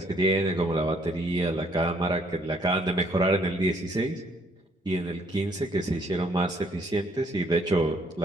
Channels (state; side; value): normal; both; correlation 0.65